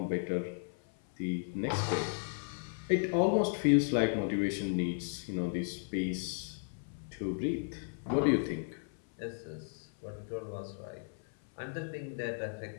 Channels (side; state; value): right; silent; 55 dB below the other